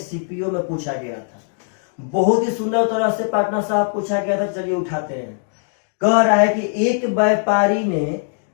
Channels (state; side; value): silent; right; digital silence